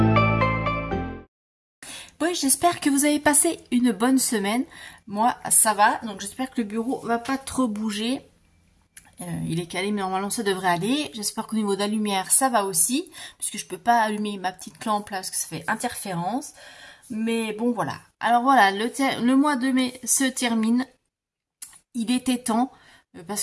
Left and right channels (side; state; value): both; identical; correlation 1.00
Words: Oui, j'espère que vous avez passé une bonne semaine. Moi, ça va. Donc, j'espère que le bureau va pas trop bouger. Il est calé, mais normalement, ça devrait aller. J'espère qu'au niveau de la lumière, ça va aussi. Puisque je peux pas allumer ma petite lampe là, parce que ça fait interférence. Mais bon, voilà. Alors voilà, le mois de mai se termine. Il était temps,